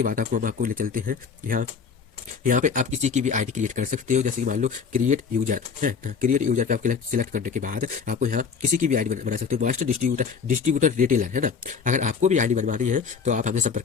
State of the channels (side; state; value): right; quieter; 5.9 dB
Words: बाद हम आपको ले चलते हैं यहाँ। यहाँ पे आप किसी की भी आईडी क्रिएट कर सकते हो, जैसे कि मान लो क्रिएट यूजर है। क्रिएट यूजर पे आप सिलेक्ट करने के बाद आपको यहाँ किसी की भी आईडी बना सकते हो। मास्टर डिस्ट्रीब्यूटर, डिस्ट्रीब्यूटर रिटेलर, है ना। अगर आपको भी आईडी बनवानी है तो आप हमसे संपर्क